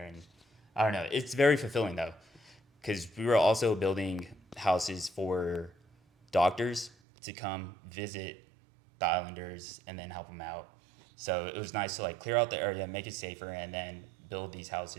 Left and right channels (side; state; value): left; drops out; at 6.9 s